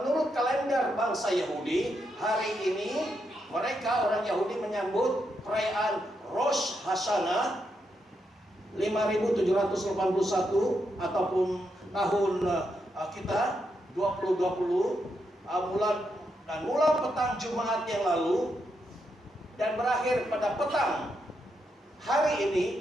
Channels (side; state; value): both; normal; correlation 0.82